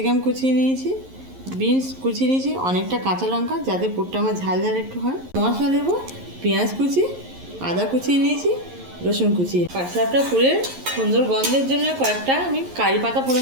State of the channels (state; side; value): late; left; 11 ms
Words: কুচিয়ে নিয়েছি, বিনস কুচিয়ে নিয়েছি, অনেকটা কাঁচা লঙ্কা যাতে পুরটা আমার ঝাল ঝাল একটু হয়। মশলা দেবো পেঁয়াজ কুচি, আদা কুচিয়ে নিয়েছি, রসুন কুচিয়ে। পাটিসাপটা পুরের সুন্দর গন্ধের জন্য কয়েকটা আমি কারি পাতা